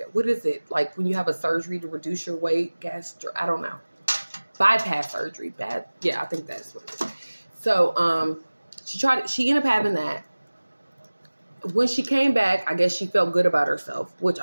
what is it? Like when you have a surgery to reduce your weight, I don't know. Bypass surgery. Yeah, I think that's what it is. So, she ended up having that. when she came back, I guess she felt good about herself, which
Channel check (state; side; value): inverted; both; correlation -1.00